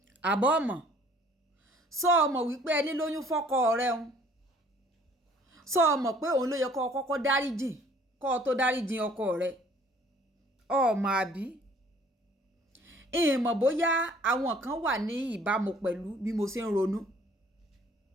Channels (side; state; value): both; normal; correlation 0.57